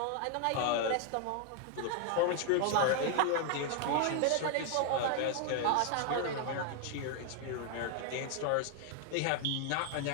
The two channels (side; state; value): both; different; correlation 0.00